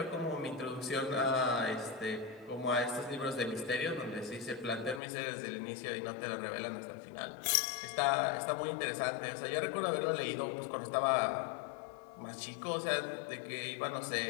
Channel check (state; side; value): drops out; right; at 5.0 s